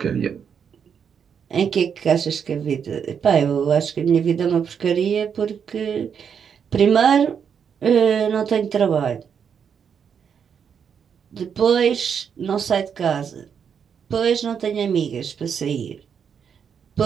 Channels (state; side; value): quieter; left; 7.3 dB